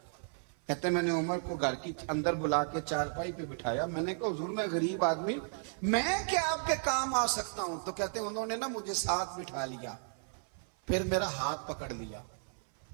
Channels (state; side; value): silent; left; 55 dB below the other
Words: کہتے میں نے عمر کو گھر کی اندر بلا کے چارپائی پہ بٹھایا، میں نے کہا حضور میں غریب آدمی، میں کیا آپ کے کام آ سکتا ہوں؟ تو کہتے انہوں نے نا مجھے ساتھ بٹھا لیا، پھر میرا ہاتھ پکڑ لیا،